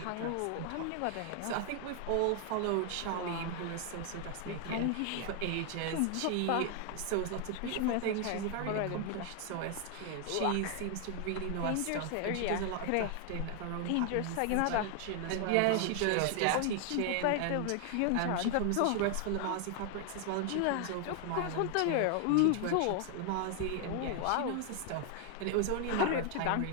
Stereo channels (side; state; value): both; different; correlation 0.00